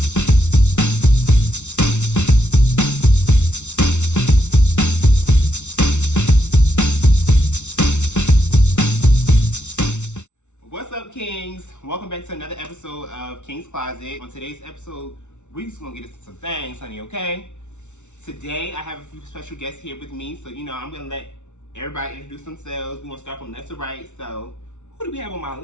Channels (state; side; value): late; right; 0.83 ms